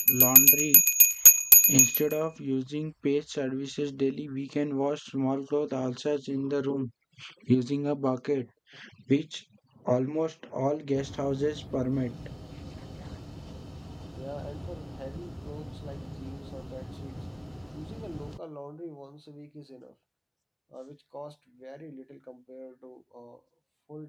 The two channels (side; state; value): both; identical; correlation 1.00